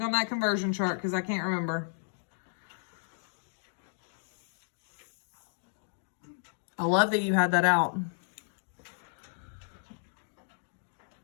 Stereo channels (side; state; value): right; silent; digital silence